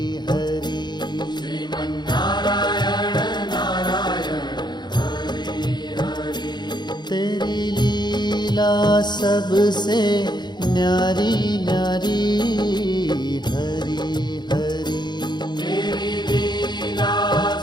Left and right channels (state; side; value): late; right; 0.21 ms